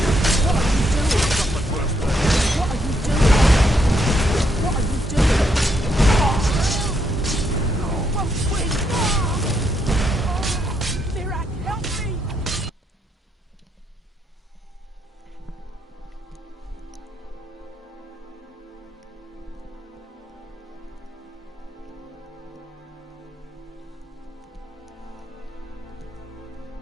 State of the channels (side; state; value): both; normal; correlation 0.76